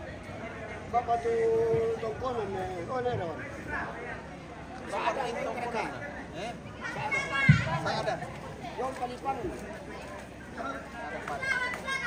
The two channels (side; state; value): both; identical; correlation 1.00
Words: Bapak tu tongkonan ni, oh ni dah. Ada ini tongkonan. Saya ada. Yang palipan.